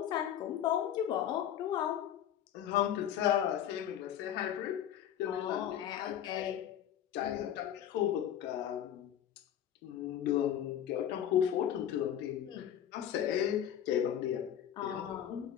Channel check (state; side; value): quieter; right; 10.3 dB